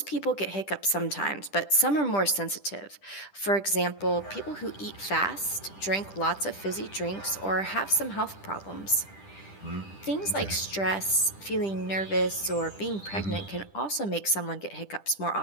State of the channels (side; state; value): right; late; 10 ms